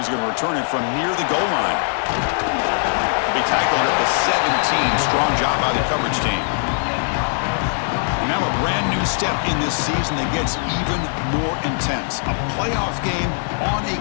going to return it from near the goal line. He'll be tackled at the 17. Strong job by the coverage team. And now a brand new step in this season that gets even more intense. A playoff game on a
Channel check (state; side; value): silent; right; digital silence